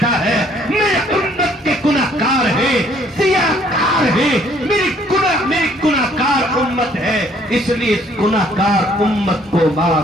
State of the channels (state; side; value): normal; both; correlation 0.62